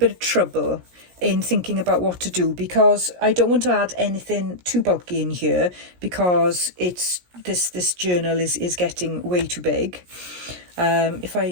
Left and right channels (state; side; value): late; left; 17 ms